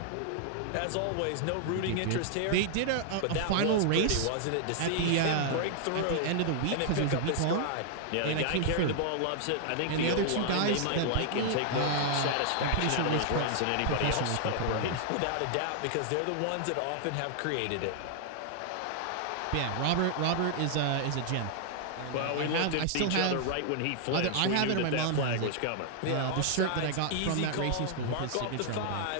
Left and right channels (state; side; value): different; both; correlation 0.00